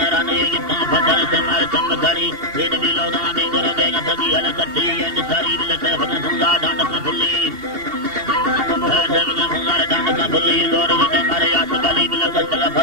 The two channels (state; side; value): late; left; 2.8 ms